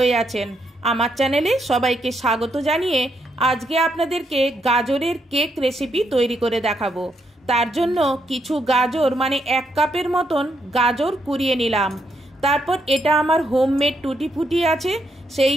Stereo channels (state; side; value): normal; both; correlation 0.78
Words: आছেন। आमार चैनेले सबाइके स्वागत जानिए आज के आपनादेरके गाजरेर केक रेसिपि तैरी करे देखाबो। तार जोन्नो किछु गाजर माने एक कापेर मतन गाजर कुड़िए निलाम। तारपर एटा आमार होममेड टुटी फुटी आछे